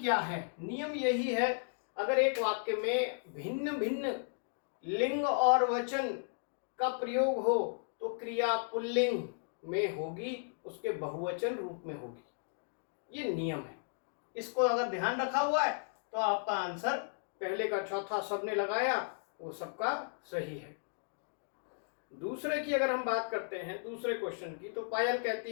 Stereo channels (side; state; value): right; silent; digital silence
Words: है? नियम यही है, अगर एक वाक्य में भिन्न भिन्न लिंग और वचन का प्रयोग हो तो क्रिया पुल्लिंग में होगी, उसके बहुवचन रूप में होगी। ये नियम है। इसको अगर ध्यान रखा हुआ है तो आपका आंसर पहले का चौथा सबने लगाया वो सबका सही है। दूसरे की अगर हम बात करते हैं, दूसरे क्वेश्चन की, तो पायल